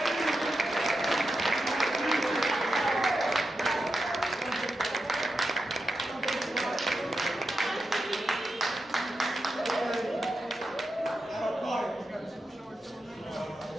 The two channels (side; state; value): both; normal; correlation 0.89